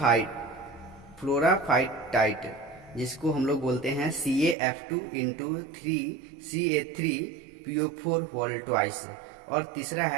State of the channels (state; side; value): drops out; left; at 4.5 s